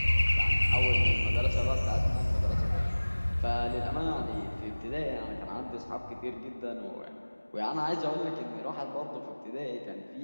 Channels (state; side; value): inverted; both; correlation -1.00